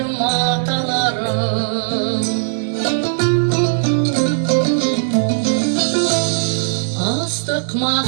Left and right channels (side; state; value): left; silent; digital silence